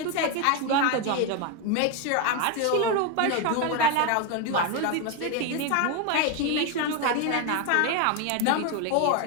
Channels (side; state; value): both; different; correlation 0.02